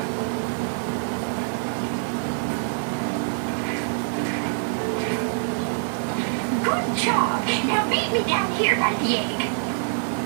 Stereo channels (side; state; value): left; silent; 57 dB below the other